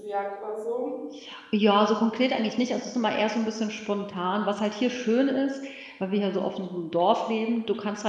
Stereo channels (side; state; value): both; identical; correlation 1.00